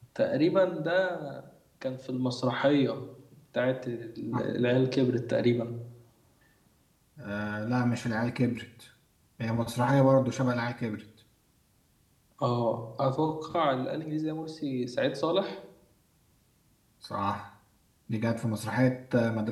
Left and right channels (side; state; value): both; identical; correlation 1.00